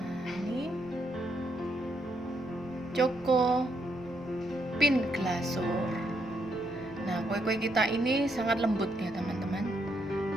ini Choco Pin Glazur. Nah, kue-kue kita ini sangat lembut ya teman-teman,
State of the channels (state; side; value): noise; left; rumble, 22 dB below the sound